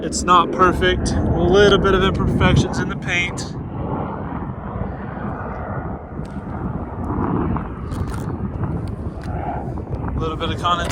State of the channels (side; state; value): both; identical; correlation 1.00